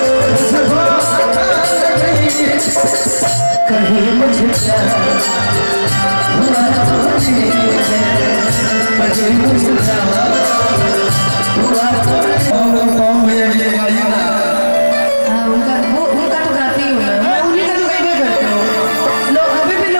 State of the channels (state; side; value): inverted; both; correlation -1.00